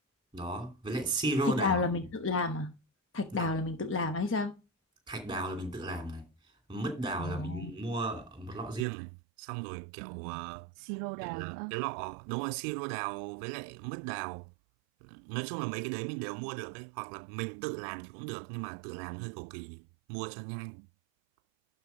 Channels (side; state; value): left; drops out; at 8.8 s